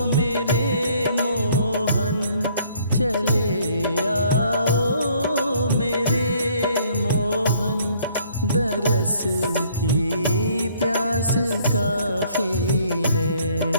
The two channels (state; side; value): inverted; both; correlation -0.61